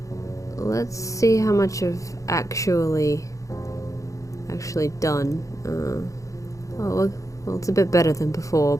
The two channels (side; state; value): right; late; 0.16 ms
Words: Let's see how much I've actually done. Well, it's a bit better than before,